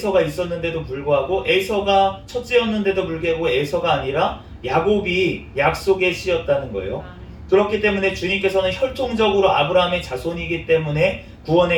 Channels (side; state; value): both; identical; correlation 1.00